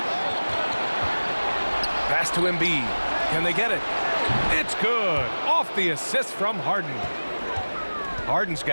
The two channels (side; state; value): both; inverted; correlation -1.00